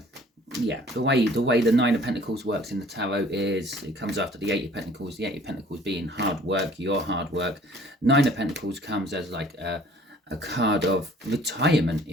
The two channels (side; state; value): both; normal; correlation 0.53